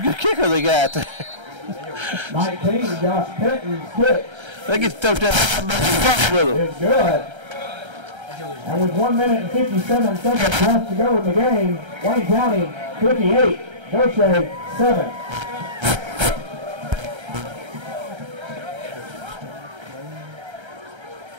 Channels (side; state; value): left; late; 1.3 ms